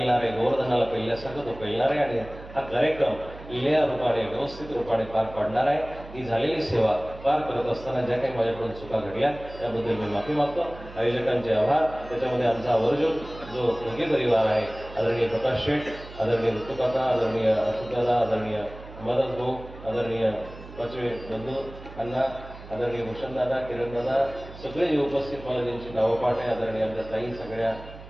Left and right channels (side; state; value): right; noise; hum, 16 dB below the sound